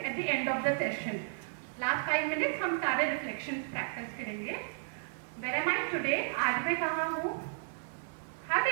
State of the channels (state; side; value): silent; left; digital silence